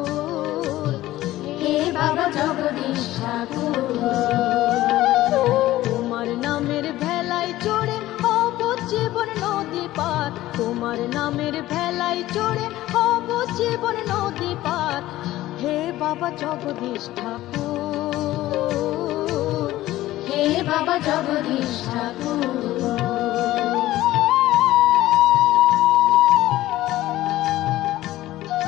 হে বাবা জগদীশ ঠাকুর, তোমার নামের ভেলায় চড়ে হব জীবন নদী পার, তোমার নামের ভেলায় চড়ে হব জীবন নদী পার। হে বাবা জগদীশ ঠাকুর, হে বাবা জগদীশ ঠাকুর।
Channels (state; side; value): quieter; right; 15.7 dB